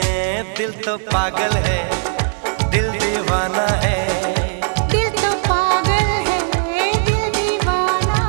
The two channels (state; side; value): silent; left; digital silence